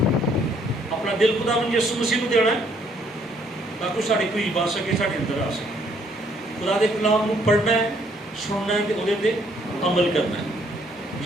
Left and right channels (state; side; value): normal; both; correlation 0.66